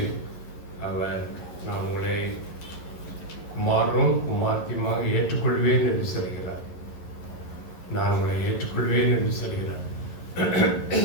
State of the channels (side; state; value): right; late; 11 ms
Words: அவர் நான் உங்களை குமாரனும் குமார்த்தியுமாக ஏற்றுக்கொள்வேன் என்று சொல்கிறார். நான் உங்களை ஏற்றுக்கொள்வேன் என்று சொல்கிறார்.